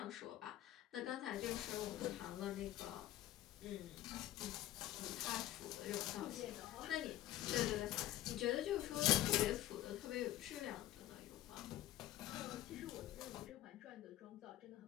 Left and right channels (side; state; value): right; quieter; 14.1 dB